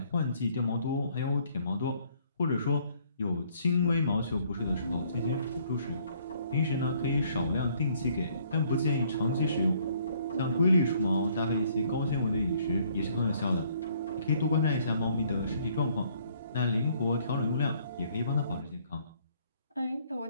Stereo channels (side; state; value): both; inverted; correlation -0.64